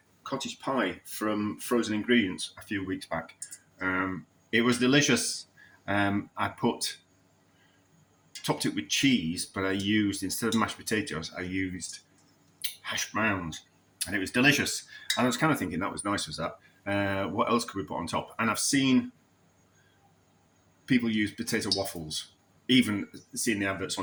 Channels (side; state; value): both; identical; correlation 1.00